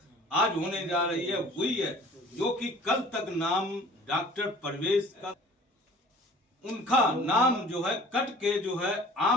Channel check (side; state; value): both; normal; correlation 0.48